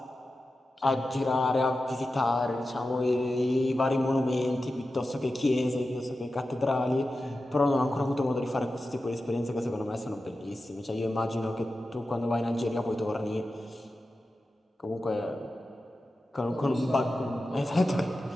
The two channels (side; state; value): both; normal; correlation 0.92